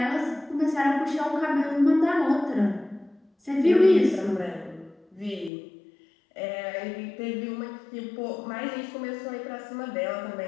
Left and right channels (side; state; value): right; drops out; at 5.5 s